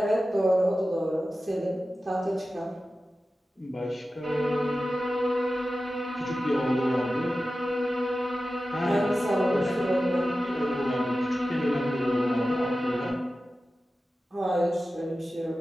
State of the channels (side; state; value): both; normal; correlation 0.94